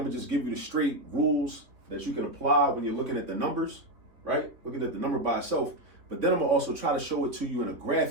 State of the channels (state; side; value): late; left; 3.3 ms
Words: going to just give you the straight rules that you can apply when you're looking at the numbers, right? Looking at the number by itself. But then I'm going to also try to show it to you in a